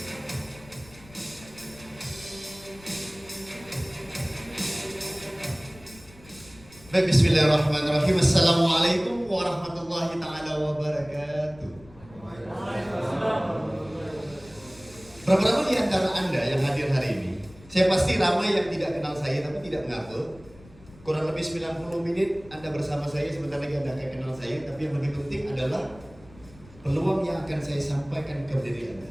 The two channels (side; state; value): left; noise; rumble, 22 dB below the sound